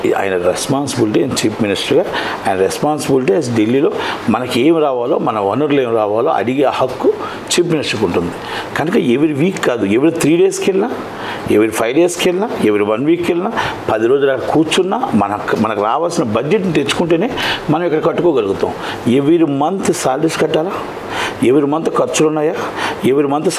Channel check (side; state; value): both; identical; correlation 1.00